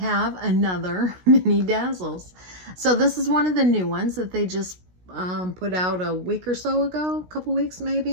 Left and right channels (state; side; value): late; left; 16 ms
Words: another Mini Dazzles. So this is one of the new ones that they just put out a week or so ago, a couple weeks